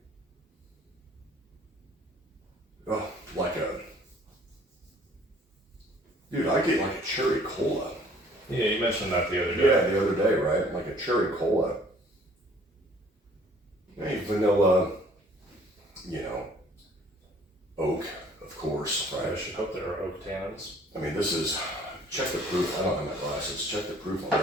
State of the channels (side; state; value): both; normal; correlation 0.56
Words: Oh, dude, I get like a cherry cola. Yeah, you mentioned that the other day. Yeah, the other day, right? Like a cherry cola. Hey, vanilla, you know, oak, of course, I right? should hope there are oak tannins. I mean, this is, check the proof. I don't have my glasses. Check the proof on